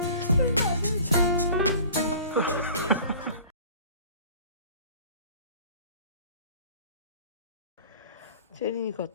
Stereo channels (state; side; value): inverted; both; correlation -0.46